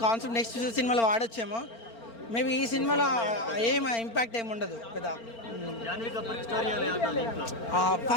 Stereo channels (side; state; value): right; late; 4.4 ms